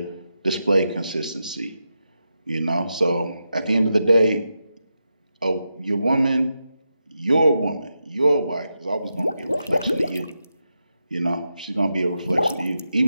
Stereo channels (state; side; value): inverted; both; correlation -0.87